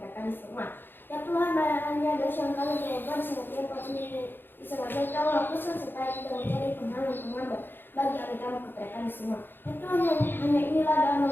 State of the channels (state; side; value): late; right; 0.099 ms